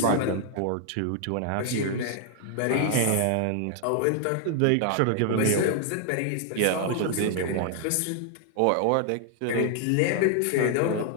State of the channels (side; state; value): both; different; correlation 0.00